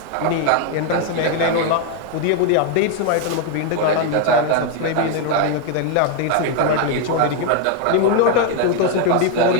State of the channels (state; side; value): different; both; correlation 0.01